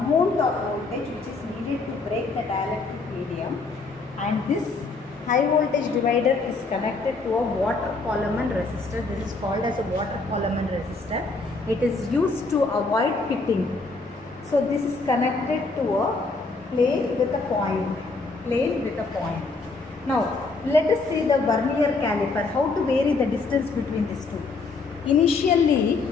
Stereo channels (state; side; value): quieter; right; 3.8 dB